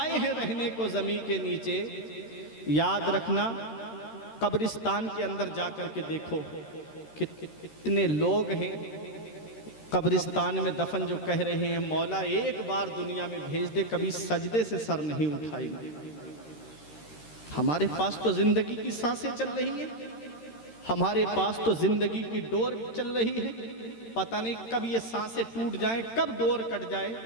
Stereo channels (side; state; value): right; late; 13 ms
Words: हैं रहने को ज़मीन के नीचे। याद रखना, कब्रिस्तान के अंदर जाकर के देखो कितने लोग हैं कब्रिस्तान में दफन, जो कह रहे हैं मौला एक बार दुनिया में भेज दे, कभी सजदे से सर नहीं उठाएंगे। हमारे पास तो जिंदगी की सांसें चल रही हैं, हमारे पास तो जिंदगी की डोर चल रही है, पता नहीं कब ये सांसें टूट जाएं, कब डोर कट जाए